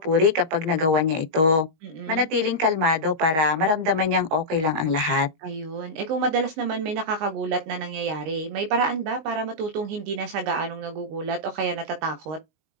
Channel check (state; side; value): late; left; 19 ms